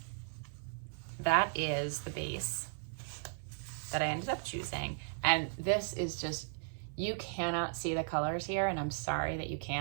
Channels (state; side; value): silent; left; 54 dB below the other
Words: that is the base that I ended up choosing. And this is just, you cannot see the colors here, and I'm sorry that you